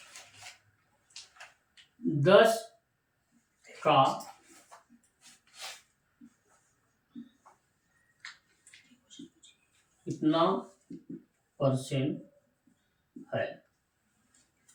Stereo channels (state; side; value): identical; both; correlation 1.00